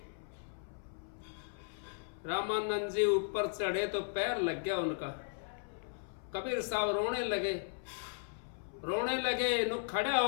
रामानंद जी ऊपर चढ़े तो पैर लग गया उनका। कबीर साहब रोने लगे। नु खड़ा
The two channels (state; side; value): silent; right; 54 dB below the other